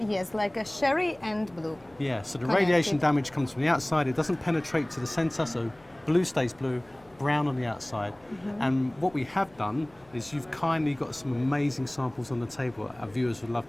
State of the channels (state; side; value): noise; left; hum, 29 dB below the sound